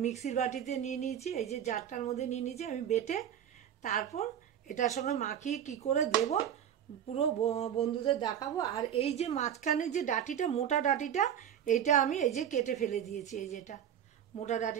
মিক্সির বাটিতে নিয়ে নিয়েছি, এই যে জারটার মধ্যে নিয়ে নিয়েছি আমি বেটে। তারপর এটার সঙ্গে মাখিয়ে কি করে দেব পুরো বন্ধুদের দেখাবো। আর এই যে মাঝখানে যে ডাঁটিটা, মোটা ডাঁটিটা, এইটা আমি এই যে কেটে ফেলে দিয়েছি। এই যেটা মোটা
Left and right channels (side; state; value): left; quieter; 9.5 dB